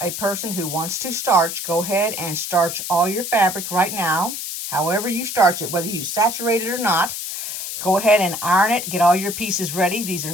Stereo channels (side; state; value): left; noise; hiss, 6 dB below the sound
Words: a person who wants to starch, go ahead and starch all your fabric right now. However you starch it, whether you saturate it or not, go ahead and iron it. Get all your pieces ready. These are